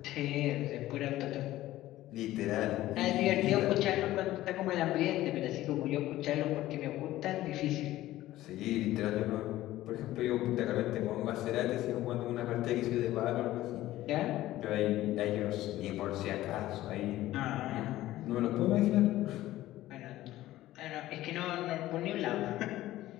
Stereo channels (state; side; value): quieter; right; 15.4 dB